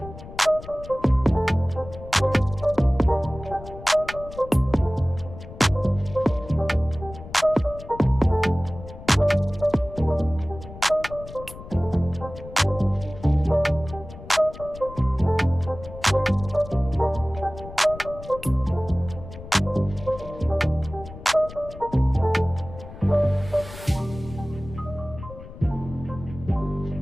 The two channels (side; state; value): left; noise; rumble, 15 dB below the sound